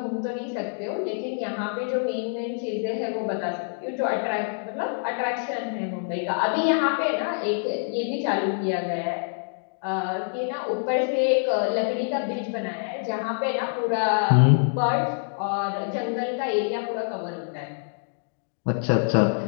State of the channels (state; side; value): silent; right; digital silence